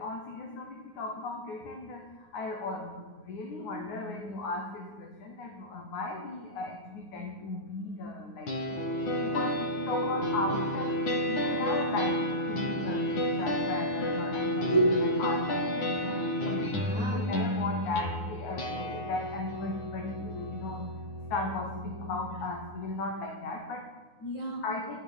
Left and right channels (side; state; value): right; late; 9.5 ms